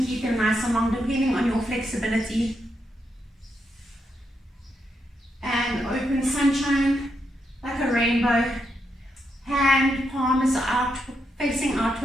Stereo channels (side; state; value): both; normal; correlation 0.82